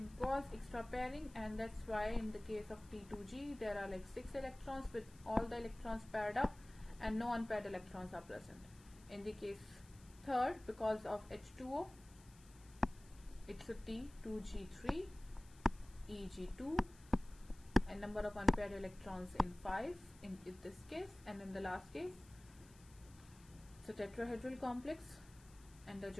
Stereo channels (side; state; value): left; noise; hiss, 24 dB below the sound